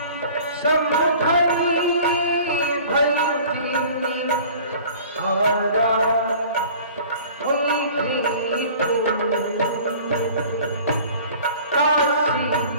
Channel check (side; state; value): both; inverted; correlation -0.46